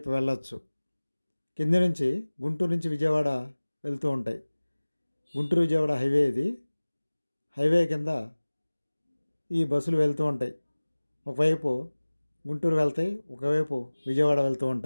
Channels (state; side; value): inverted; both; correlation -1.00